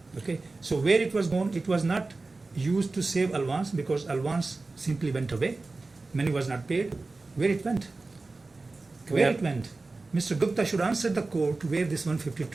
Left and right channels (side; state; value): left; quieter; 3.5 dB